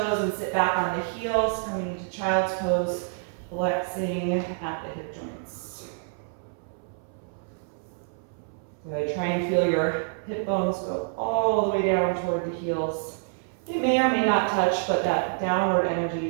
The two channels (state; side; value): silent; left; 60 dB below the other